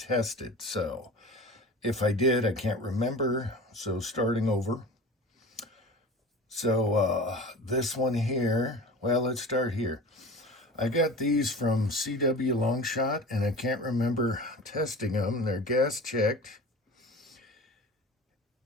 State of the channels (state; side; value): normal; both; correlation 0.36